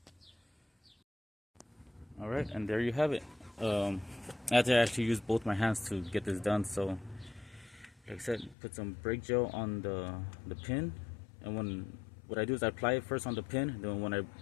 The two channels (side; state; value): right; drops out; at 8.6 s